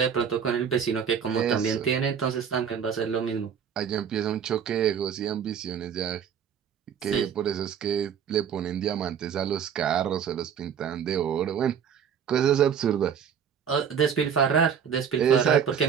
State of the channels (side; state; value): left; quieter; 7.7 dB